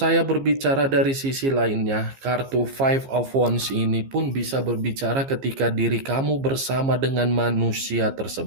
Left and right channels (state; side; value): late; left; 15 ms